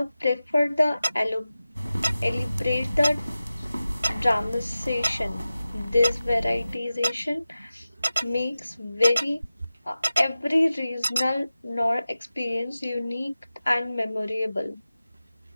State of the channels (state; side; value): inverted; both; correlation -0.95